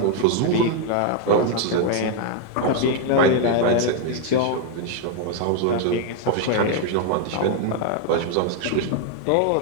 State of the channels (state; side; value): different; both; correlation 0.00